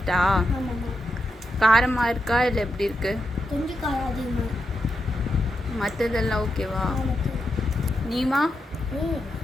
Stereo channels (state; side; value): normal; both; correlation 0.85